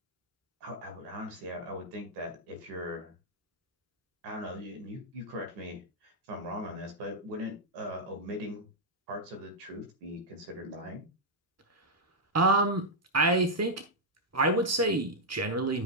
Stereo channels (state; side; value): normal; both; correlation -0.04